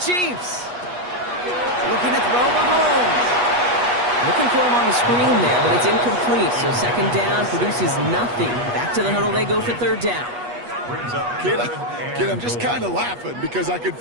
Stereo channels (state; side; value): late; left; 8.3 ms